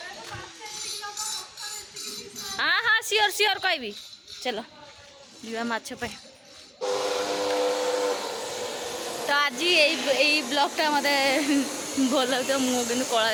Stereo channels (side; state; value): both; identical; correlation 1.00